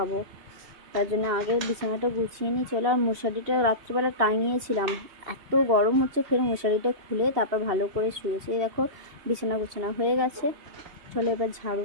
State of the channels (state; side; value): late; left; 2.7 ms